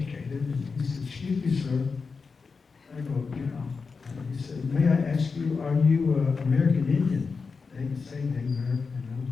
And he said, "Excuse me, sir." I go, "Yeah." And he said, "May I ask you, are you American Indian?" They didn't say they American in those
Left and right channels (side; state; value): right; quieter; 4.8 dB